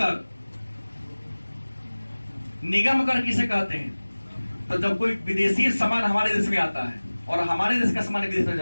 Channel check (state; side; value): inverted; both; correlation -1.00